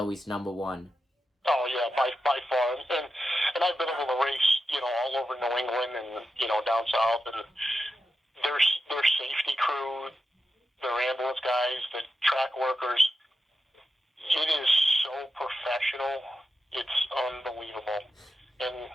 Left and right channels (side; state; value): both; normal; correlation 0.89